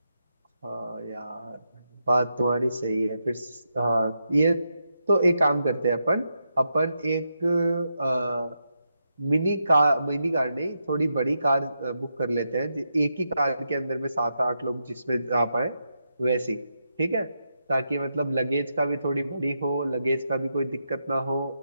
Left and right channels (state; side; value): inverted; both; correlation -0.84